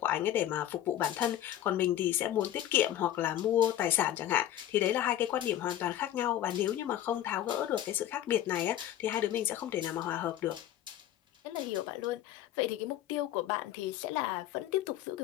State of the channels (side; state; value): right; quieter; 12.3 dB